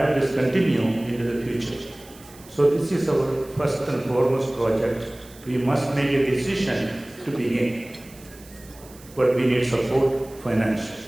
this continue into the future. So this is our first and foremost project. We must make a decision to begin, but we need support financially.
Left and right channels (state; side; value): noise; right; hiss, 22 dB below the sound